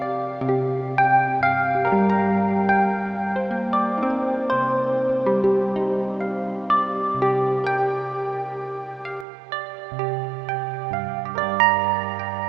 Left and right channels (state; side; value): drops out; left; at 9.2 s